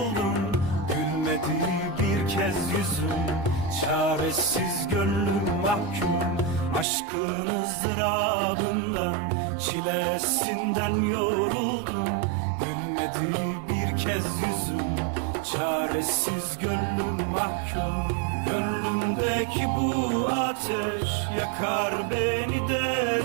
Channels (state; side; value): drops out; left; at 6.9 s